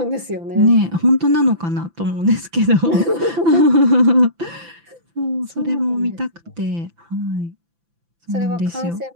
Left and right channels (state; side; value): late; left; 5.9 ms